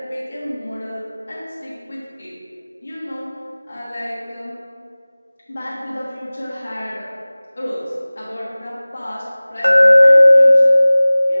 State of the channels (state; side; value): inverted; both; correlation -0.99